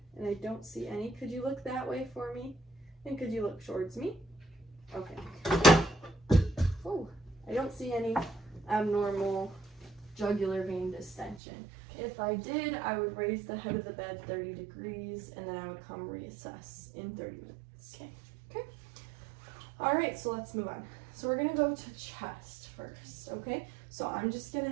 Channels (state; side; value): drops out; left; at 11.4 s